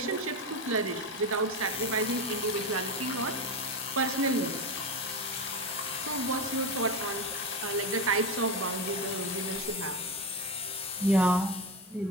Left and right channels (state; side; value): normal; both; correlation 0.17